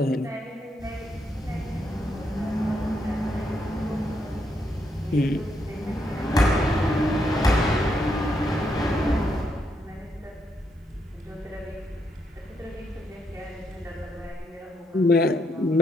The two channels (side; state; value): both; normal; correlation 0.78